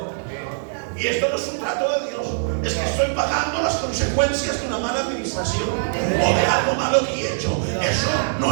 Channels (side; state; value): left; silent; digital silence